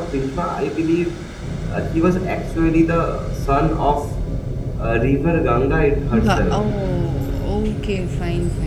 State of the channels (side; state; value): both; identical; correlation 1.00